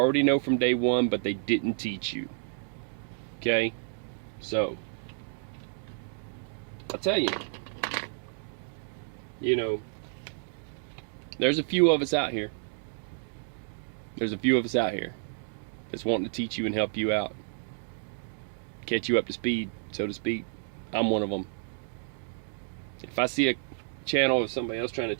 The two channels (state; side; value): silent; left; digital silence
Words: know from day one, but they didn't teach you. Okay? So, I'll tell you, there's a few of us out here. There's a few of us out here that's wanting to teach you and help you out. Catch you up to speed, so to speak. I'm one of them. If I see a channel of somebody else trying to